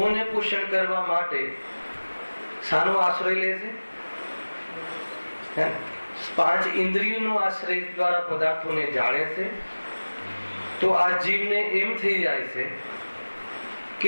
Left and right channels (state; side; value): inverted; both; correlation -1.00